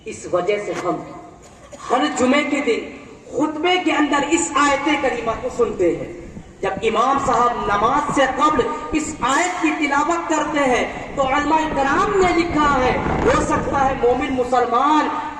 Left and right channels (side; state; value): both; identical; correlation 1.00